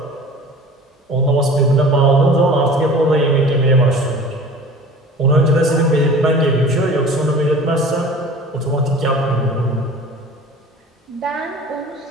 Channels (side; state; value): both; normal; correlation 0.42